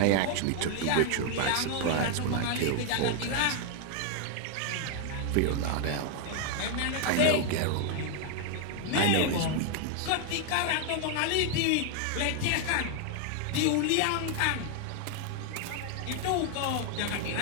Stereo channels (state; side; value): different; both; correlation 0.00